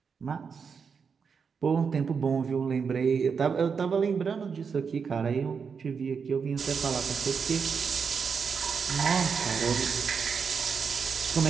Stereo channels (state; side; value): quieter; left; 6.0 dB